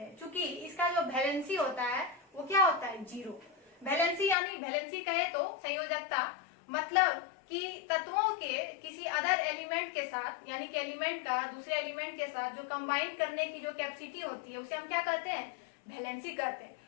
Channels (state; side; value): drops out; right; at 4.4 s